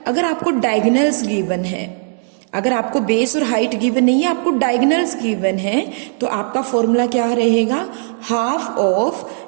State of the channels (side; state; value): left; silent; 60 dB below the other